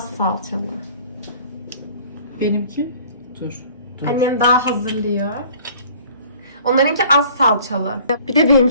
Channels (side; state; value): both; inverted; correlation -0.51